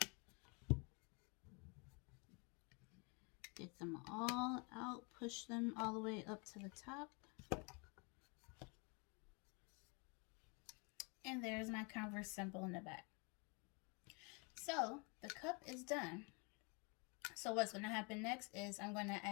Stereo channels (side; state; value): right; quieter; 32.5 dB